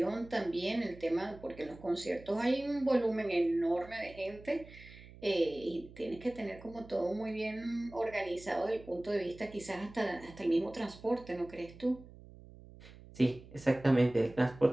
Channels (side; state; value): right; noise; hum, 19 dB below the sound